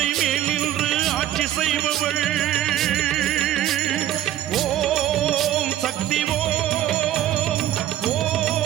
மேல் நின்று ஆட்சி செய்பவள் ஓம் சக்தி ஓம்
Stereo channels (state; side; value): quieter; left; 12.3 dB